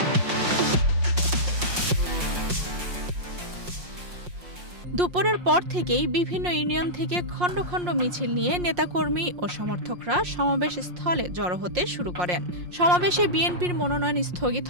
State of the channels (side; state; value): left; late; 5.6 ms